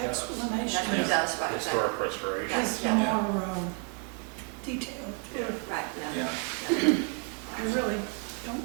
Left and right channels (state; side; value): quieter; left; 39.2 dB